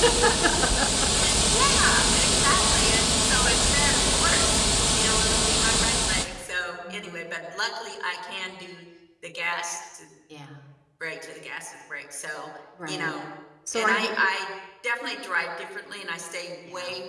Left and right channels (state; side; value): identical; both; correlation 1.00